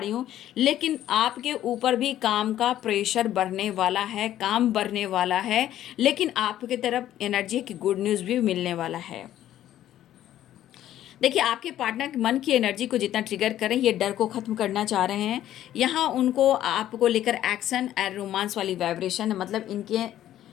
हूँ। लेकिन आपके ऊपर भी काम का प्रेशर बढ़ने वाला है, काम बढ़ने वाला है, लेकिन आपकी तरफ एनर्जी की गुड न्यूज़ भी मिलने वाला है। देखिए, आपके पार्टनर के मन की एनर्जी को जितना ट्रिगर करें, ये डर को ख़त्म करना चाह रहे हैं। यहाँ उनको आपको लेकर एक्शन एंड रोमांस वाली वाइब्रेशन, मतलब इनके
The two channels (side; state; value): right; quieter; 12.4 dB